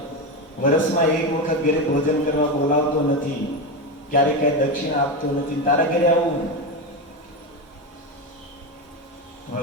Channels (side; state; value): both; normal; correlation 0.16